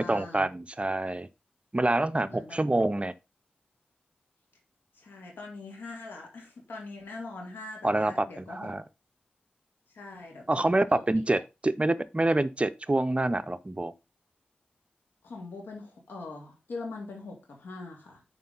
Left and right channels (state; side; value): normal; both; correlation 0.95